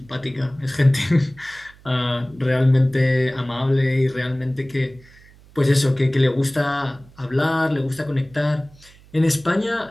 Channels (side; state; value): right; noise; hum, 25 dB below the sound